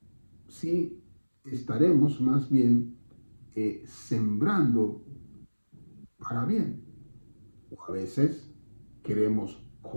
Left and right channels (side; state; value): both; inverted; correlation -1.00